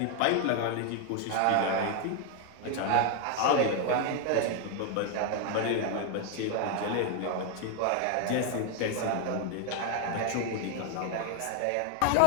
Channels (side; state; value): both; different; correlation 0.00